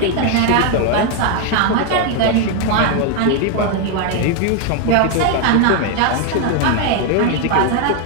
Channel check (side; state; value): both; different; correlation 0.01